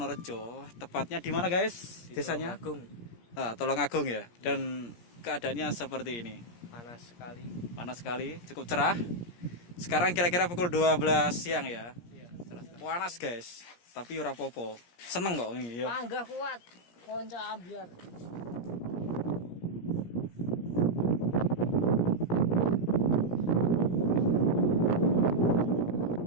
Tepatnya di mana guys? Desanya? Agung. Tulungagung ya. Dan keadaannya seperti ini. Panas sekali. Panas sekali, cukup cerah. Sekarang kira-kira pukul 12 siang ya. Iya, cerah. Panas guys, tapi ora popo. Seneng kok ini ya. Panggah kuat. Konca ambiar.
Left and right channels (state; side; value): late; right; 17 ms